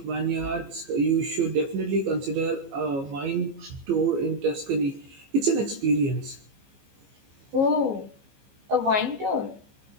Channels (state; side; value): late; left; 15 ms